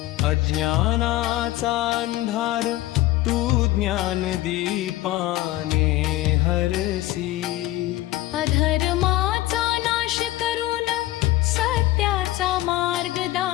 अज्ञानाचा अंधार तू ज्ञान दीपाने हरसी। अधर्माचा नाश करून सत्याचा मार्ग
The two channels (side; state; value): right; quieter; 16.5 dB